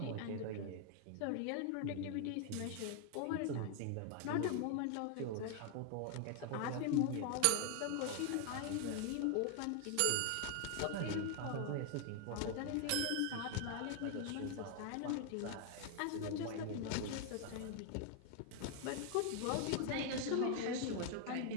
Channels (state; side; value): different; both; correlation 0.01